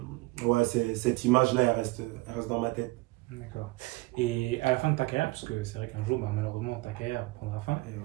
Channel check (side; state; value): left; quieter; 22.6 dB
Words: ouais, cette image-là, elle reste dans ma tête. D'accord. Et à la fin de ta carrière, parce que c'est vrai qu'un jour, bah, malheureusement, ta carrière prendra fin, Et ouais.